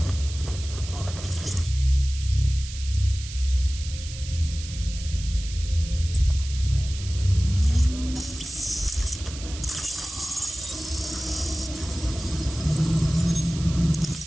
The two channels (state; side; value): noise; right; hiss, 13 dB below the sound